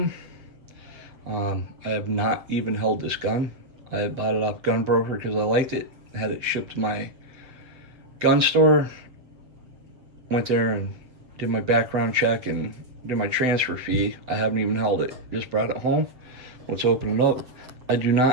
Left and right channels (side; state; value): left; late; 7.9 ms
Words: I have not even held this gun. I had bought it off Gun Broker because I liked it. I had it shipped to my gun store. Went there and did my background check and did my transfer fee. I haven't even held it. Just brought it home. Let's open it up. I do